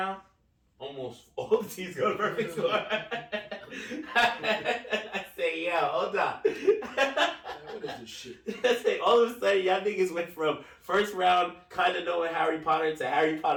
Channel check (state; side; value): identical; both; correlation 1.00